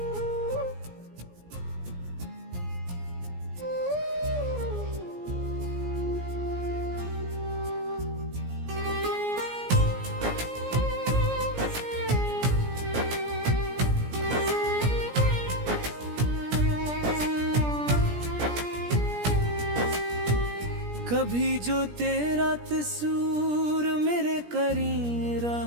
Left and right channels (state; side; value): late; left; 17 ms